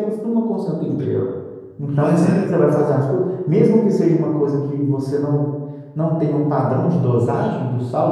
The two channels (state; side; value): identical; both; correlation 1.00